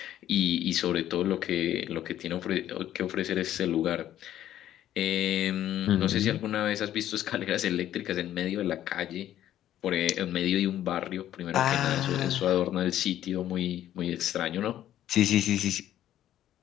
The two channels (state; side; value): quieter; right; 12.1 dB